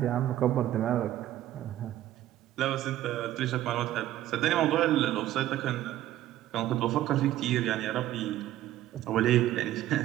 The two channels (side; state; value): left; quieter; 13.6 dB